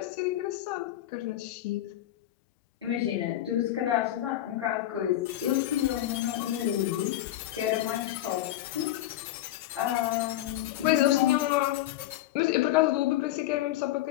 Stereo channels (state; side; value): quieter; right; 13.9 dB